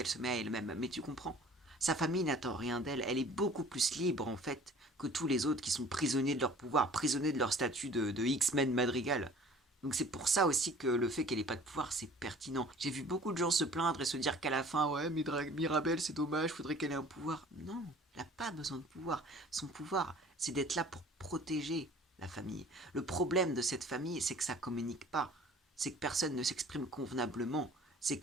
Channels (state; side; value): normal; both; correlation 0.49